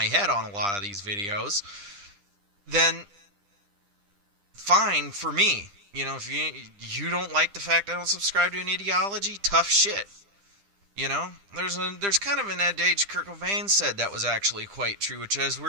head on a lot of these videos, then fine for me. If you don't like the fact I don't subscribe to an ideology, tough shit. There's kind of an adage Kurt Cobain said that was actually quite true, which is the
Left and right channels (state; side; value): late; left; 10 ms